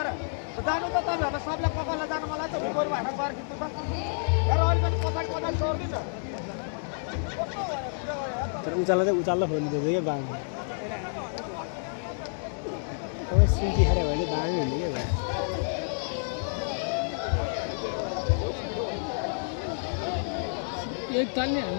जानु त तपाईँहरूलाई सबलाई ककललाई जानु मन लाग्छ गोरु हाट गएर खिच्नु त तर अलिकति पछाडि पछाडि छोडिदिन्छ तर उचाल्ला खोल्नु क्या बाङ अब सिन्की खाएर भने बाङ हुने क्या भाइ एक तालले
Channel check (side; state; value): right; silent; 59 dB below the other